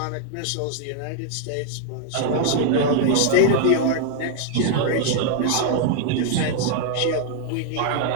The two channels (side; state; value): both; different; correlation 0.00